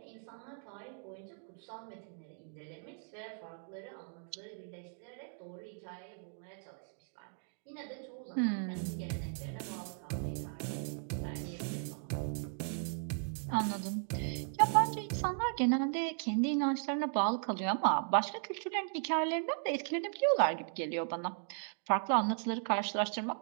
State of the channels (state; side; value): silent; left; 53 dB below the other